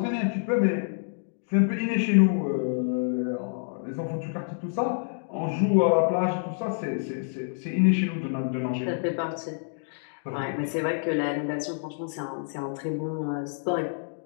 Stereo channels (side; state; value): right; silent; digital silence